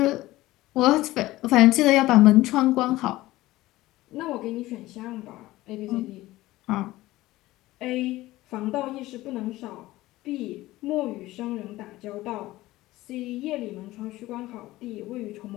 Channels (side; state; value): right; quieter; 17.5 dB